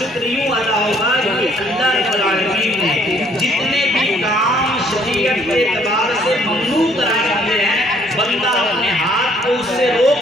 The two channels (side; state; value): both; normal; correlation 0.62